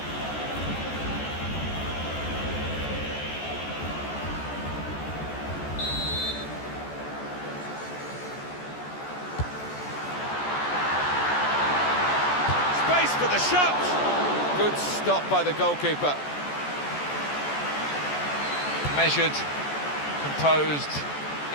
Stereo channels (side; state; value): right; late; 14 ms